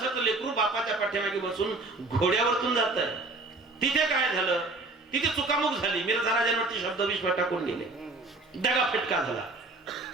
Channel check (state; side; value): quieter; left; 3.2 dB